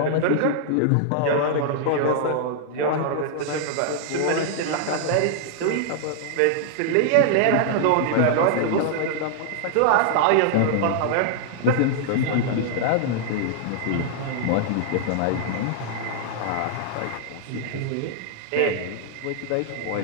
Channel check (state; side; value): different; both; correlation -0.01